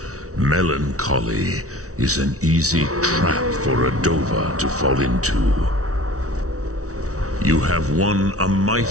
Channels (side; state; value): left; late; 0.65 ms